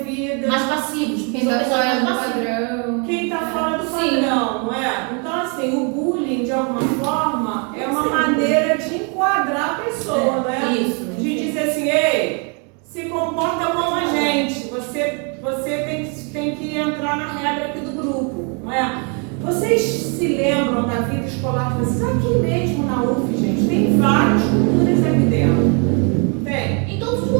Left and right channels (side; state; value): left; quieter; 36.6 dB